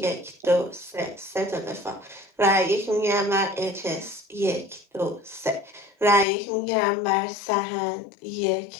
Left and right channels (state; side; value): drops out; right; at 6.2 s